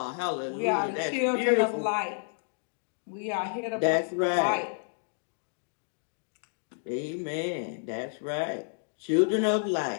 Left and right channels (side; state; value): right; silent; digital silence